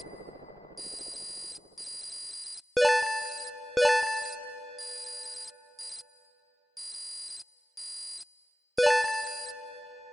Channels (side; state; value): both; normal; correlation 0.97